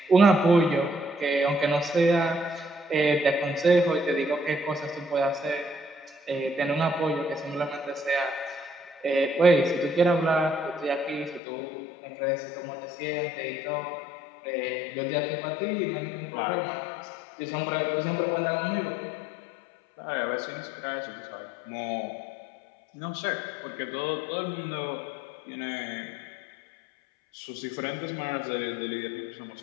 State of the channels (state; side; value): drops out; right; at 11.4 s